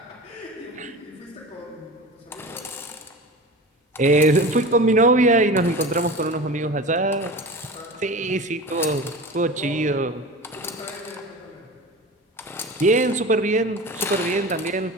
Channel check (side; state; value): both; normal; correlation 0.33